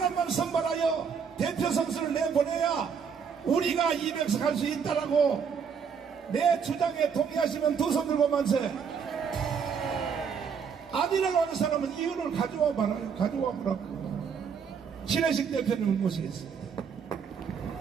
선발하여 대표 선수를 내보내야 우리가 200석 할 수 있다라고 내 주장에 동의하시면 두 손 들고 만세. 아니라고 하는 사람은 이유를 가져와 봐라요. 가져와 보라고. 신혜식 대표님을 모시겠습니다.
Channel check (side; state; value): left; quieter; 6.6 dB